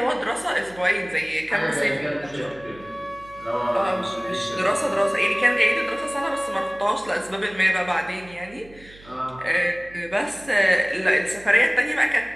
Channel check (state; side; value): noise; right; hum, 22 dB below the sound